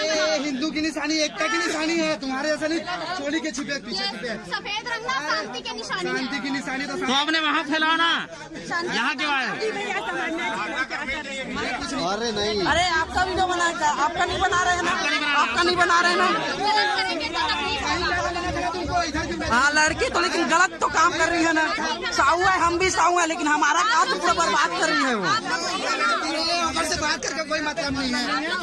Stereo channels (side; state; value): both; identical; correlation 1.00